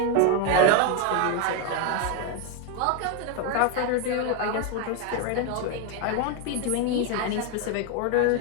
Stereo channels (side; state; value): both; different; correlation 0.01